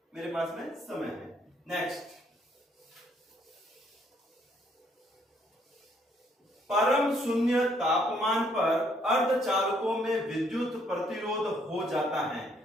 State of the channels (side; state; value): both; normal; correlation 0.68